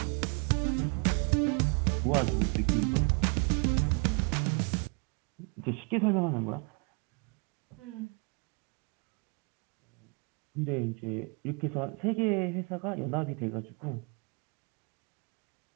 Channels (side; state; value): left; quieter; 34.7 dB